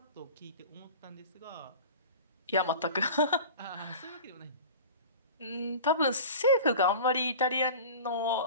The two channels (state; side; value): inverted; both; correlation -0.37